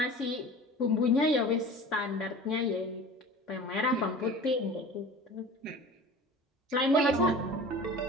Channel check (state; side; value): normal; both; correlation 0.39